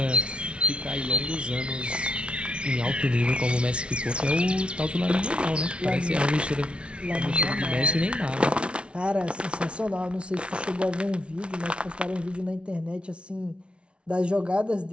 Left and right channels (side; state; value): left; late; 0.059 ms